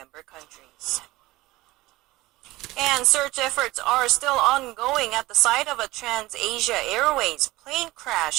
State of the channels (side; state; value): left; quieter; 19.0 dB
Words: countries. And search efforts are still ongoing at the site of a Trans-Asia Airways plane